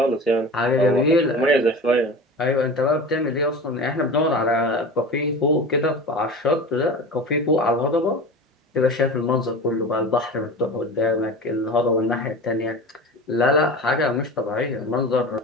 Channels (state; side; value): normal; both; correlation 0.32